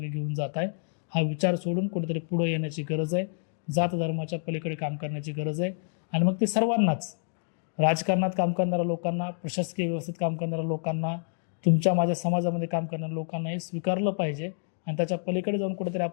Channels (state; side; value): silent; right; digital silence